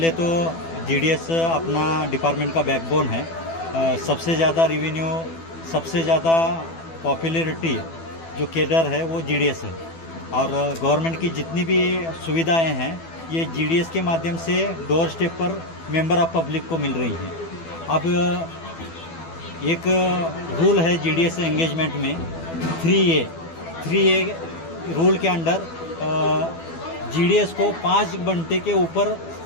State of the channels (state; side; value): late; right; 12 ms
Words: तो जीडीएस अपना डिपार्टमेंट का बैकबोन है। सबसे ज़्यादा रेवेन्यू, सबसे ज़्यादा पॉपुलैरिटी जो केडर है वो जीडीएस है, और गवर्नमेंट की जितनी भी सुविधाएं हैं ये जीडीएस के माध्यम से डोर स्टेप पर मेंबर ऑफ पब्लिक को मिल रही हैं। अब एक रूल है जीडीएस एंगेजमेंट में 3A रूल के अंडर जीडीएस को 5 घंटे के ऊपर